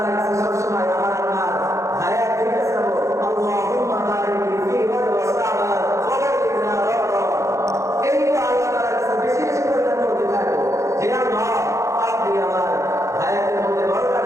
কাছে সবসময় আমার আপনার হায়াত দিতে চাবো, আল্লাহুম্মা বারিক ফি ওয়া সাবাত ওয়া বারিকনা রমজান। এই তো আল্লাহ তাআলার কাছে বেশি বেশি করে করতে থাকবো যে আল্লাহ, আপনি আমার হায়াতের মধ্যে বরকত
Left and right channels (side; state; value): left; late; 0.15 ms